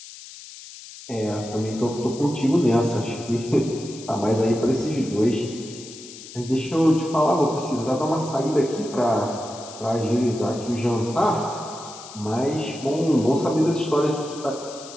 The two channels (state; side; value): noise; left; hiss, 16 dB below the sound